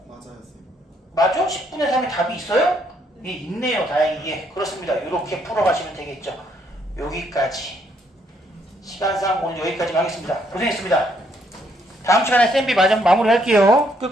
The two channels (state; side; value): normal; both; correlation 0.71